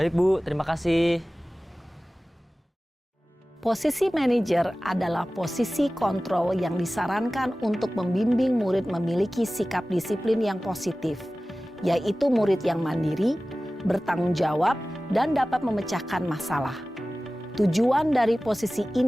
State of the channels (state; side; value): normal; both; correlation 0.97